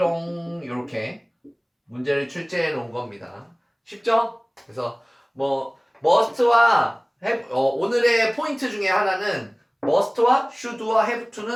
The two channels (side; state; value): both; identical; correlation 1.00